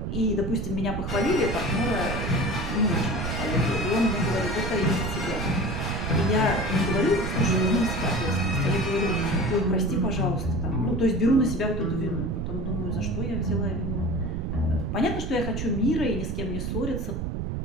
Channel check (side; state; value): right; noise; rumble, 3 dB below the sound